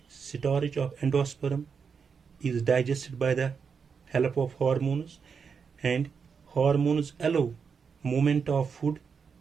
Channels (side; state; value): left; quieter; 6.0 dB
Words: storage of endosperm is digested by the help of hormones, and hormones allow movement of food